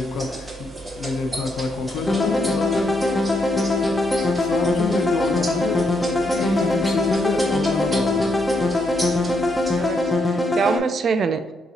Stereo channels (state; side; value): normal; both; correlation 0.78